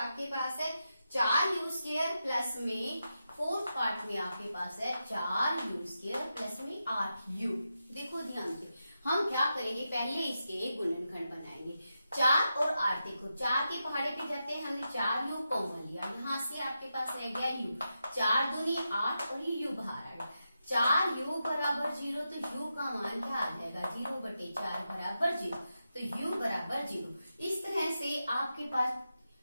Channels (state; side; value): inverted; both; correlation -0.88